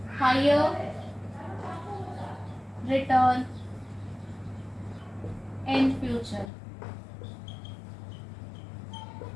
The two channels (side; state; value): right; drops out; at 6.5 s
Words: higher return in future.